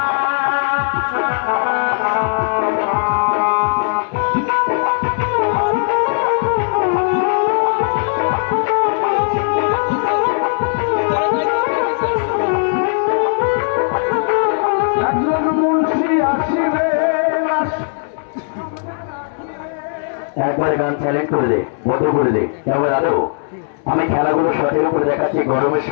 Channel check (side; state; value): right; silent; digital silence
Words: একবারে গান সাইলেন্ট করে দে, বন্ধ করে দে। এবার আরো আমি খেলাগুলো সঠিক করে দেখাচ্ছি। গরমের